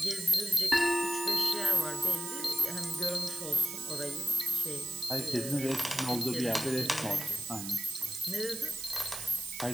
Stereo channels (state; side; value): noise; right; hiss, 7 dB below the sound